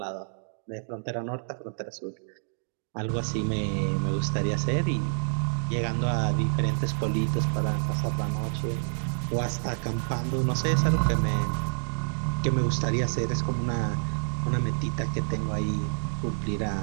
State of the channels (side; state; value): left; silent; digital silence